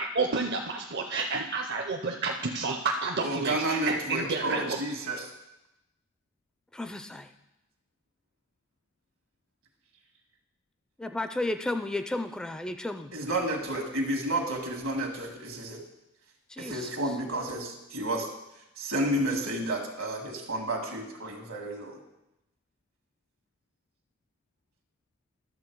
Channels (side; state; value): both; normal; correlation 0.17